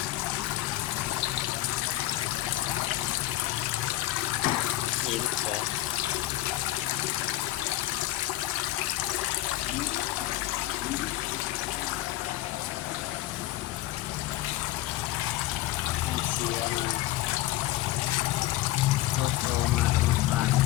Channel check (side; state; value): right; quieter; 15.9 dB